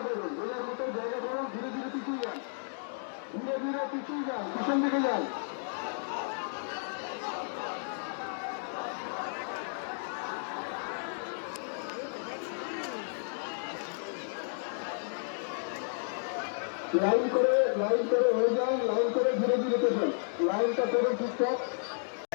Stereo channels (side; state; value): right; silent; digital silence